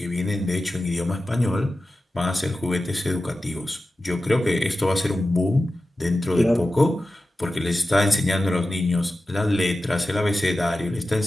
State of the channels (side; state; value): both; normal; correlation 0.94